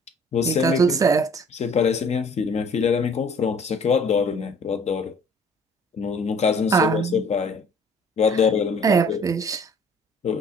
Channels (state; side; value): normal; both; correlation 0.54